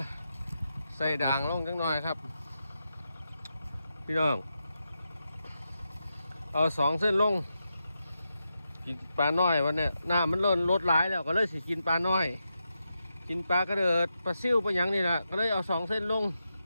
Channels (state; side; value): inverted; both; correlation -0.87